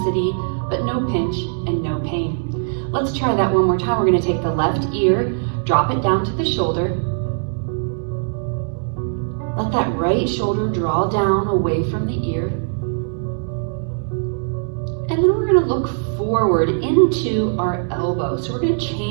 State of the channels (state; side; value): silent; left; 65 dB below the other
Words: but no pinch and no pain. Let's try that one more time. We're going to take the left ear, drop it down to the shoulder. let that right shoulder draw down away from the ear. And then we're going to look forward into our elbow. So we're going to